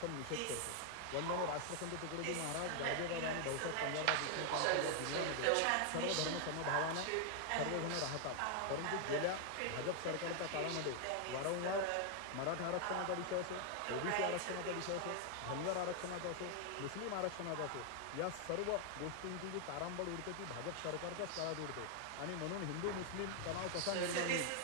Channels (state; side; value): different; both; correlation 0.00